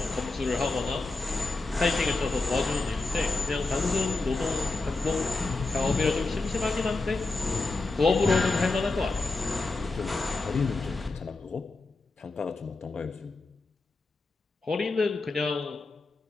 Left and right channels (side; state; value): right; quieter; 3.4 dB